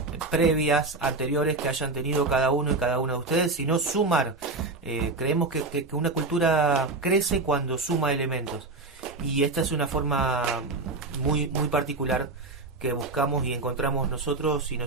previas, anteriores que hayan tenido cada uno y cada una de ustedes, sino sumar. Creemos que una cultura crece cuando suma elementos, y esta es una forma muy, muy particular que buscamos y encontramos nosotros y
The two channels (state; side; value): quieter; left; 3.4 dB